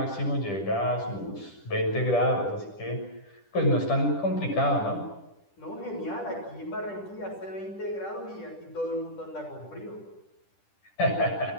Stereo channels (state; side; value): late; right; 10 ms